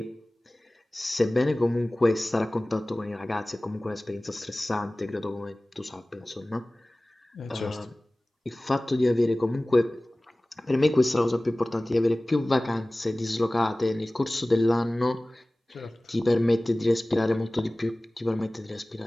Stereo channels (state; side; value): normal; both; correlation 0.98